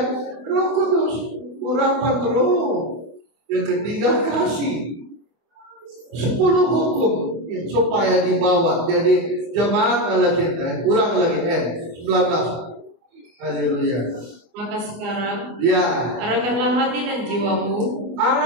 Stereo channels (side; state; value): left; late; 25 ms